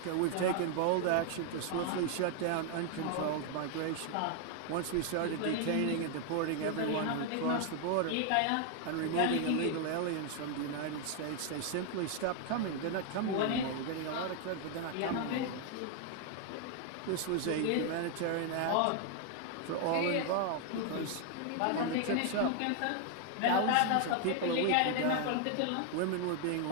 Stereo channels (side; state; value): both; different; correlation 0.00